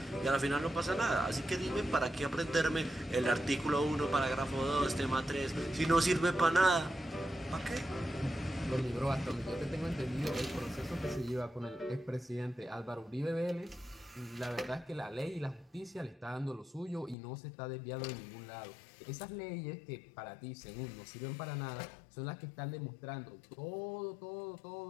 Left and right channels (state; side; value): drops out; right; at 17.2 s